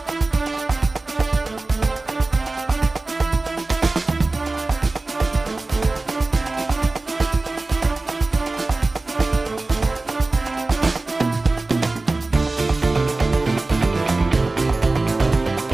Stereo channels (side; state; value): left; quieter; 3.2 dB